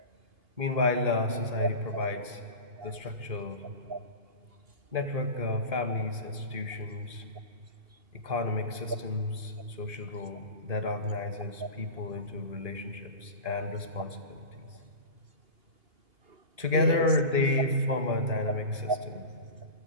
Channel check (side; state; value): left; late; 2.5 ms